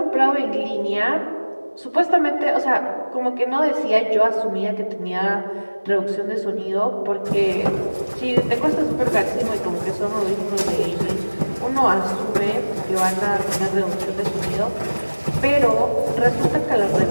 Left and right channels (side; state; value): both; inverted; correlation -1.00